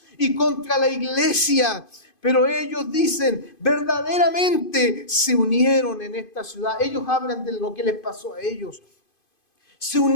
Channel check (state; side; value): late; right; 2.5 ms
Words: y contra la iglesia. Pero ellos dicen, verdaderamente se unieron en esta ciudad. Ellos hablan de lo que les pasó a ellos. Se